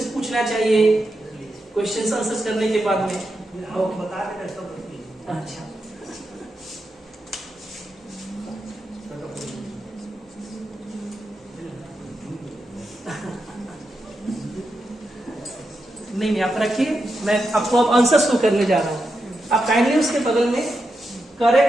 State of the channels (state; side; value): normal; both; correlation 0.86